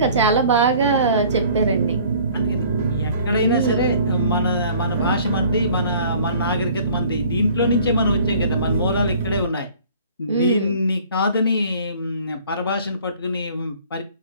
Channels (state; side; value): inverted; both; correlation -0.52